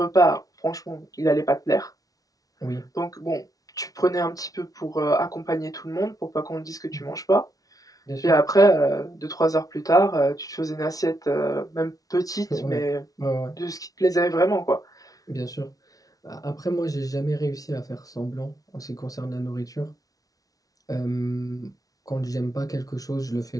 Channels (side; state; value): right; late; 0.18 ms